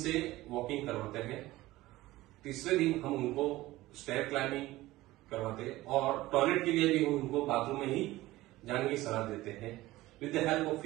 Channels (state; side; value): quieter; left; 17.6 dB